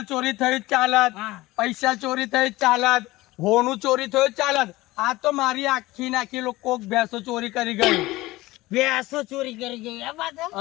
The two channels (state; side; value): quieter; right; 19.0 dB